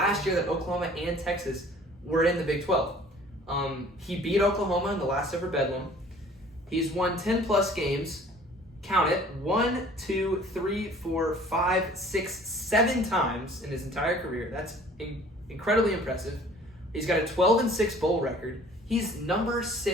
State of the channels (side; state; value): both; normal; correlation 0.51